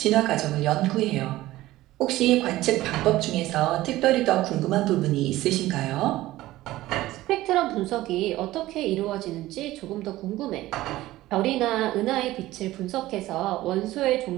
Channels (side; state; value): left; quieter; 16.5 dB